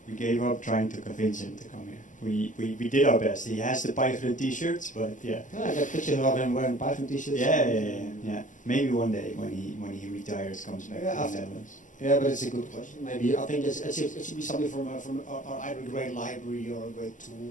We gave up trying to convince him to come here. We did our best. He has the pyGrun t-shirts, but yeah. I got pictures of him wearing pyGrun t-shirts. Yeah. Maybe one day when he retires, comes back to the Netherlands. Yeah, but it's a good question. Maybe I think it should be something from either a great library or a great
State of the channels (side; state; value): right; late; 0.37 ms